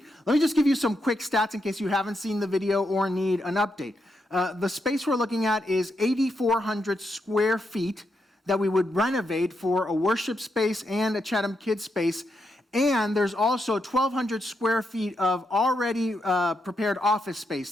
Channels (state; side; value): normal; both; correlation 0.82